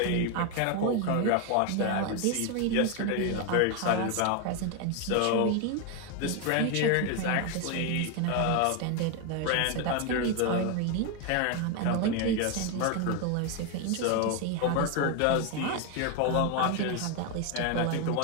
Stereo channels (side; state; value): both; different; correlation 0.01